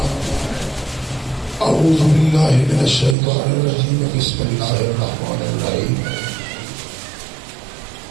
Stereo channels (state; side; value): drops out; left; at 3.2 s